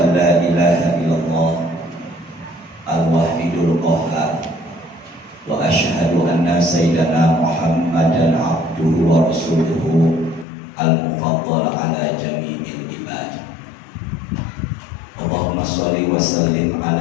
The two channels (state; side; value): drops out; right; at 10.5 s